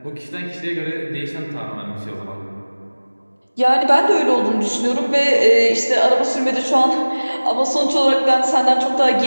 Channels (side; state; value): both; inverted; correlation -1.00